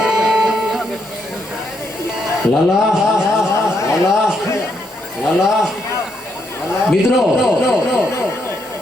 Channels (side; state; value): both; normal; correlation 0.77